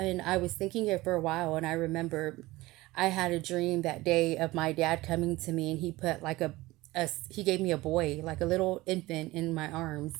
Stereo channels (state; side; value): quieter; left; 19.3 dB